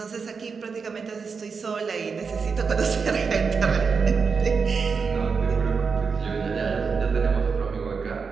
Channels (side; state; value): left; quieter; 5.4 dB